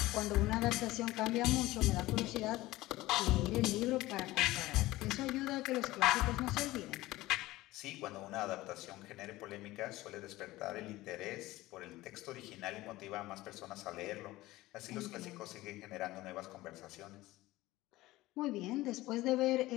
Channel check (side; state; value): right; quieter; 18.0 dB